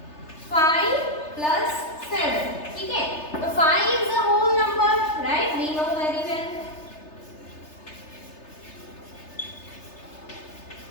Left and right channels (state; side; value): late; right; 3.3 ms